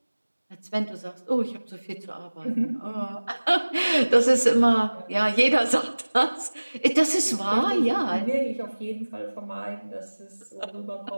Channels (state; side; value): inverted; both; correlation -1.00